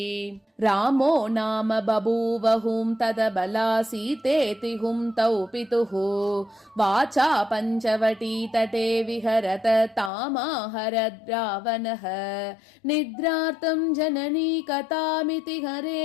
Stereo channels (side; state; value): right; drops out; at 10.1 s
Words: रामो नाम बभूव हुं तदबला सीतेति हुं तौ पितुः वाचा पञ्चवटी तटे विहरत तामाहरद् रावणः निद्रार्तं जननी कथामिति